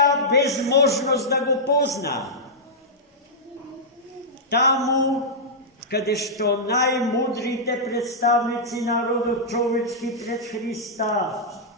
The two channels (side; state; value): both; normal; correlation -0.10